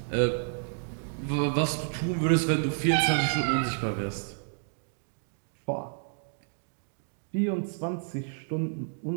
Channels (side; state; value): left; silent; digital silence